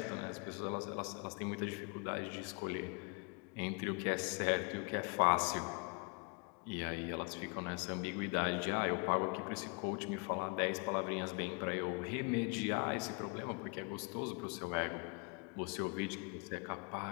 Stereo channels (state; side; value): quieter; right; 34.3 dB